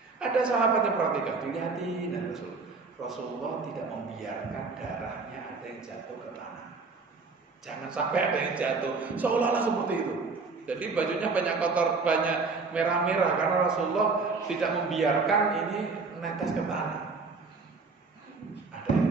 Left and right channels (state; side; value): quieter; left; 4.2 dB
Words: Ada sahabat yang perhatikan, dilihatin, dan Rasulullah tidak membiarkan darahnya ada yang jatuh ke tanah. Jangan sampai ada yang jatuh, seolah-olah seperti itu. Jadi bajunya banyak kotor, banyak merah-merah, karena Rasulullah tidak membiarkan ini netes ke tanah. Ada